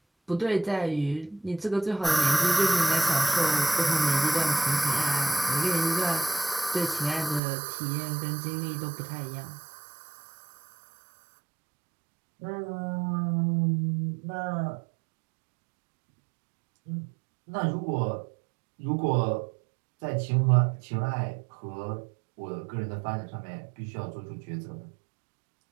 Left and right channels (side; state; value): left; drops out; at 7.4 s